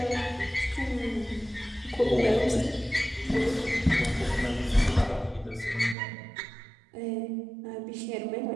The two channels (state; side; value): drops out; left; at 6.0 s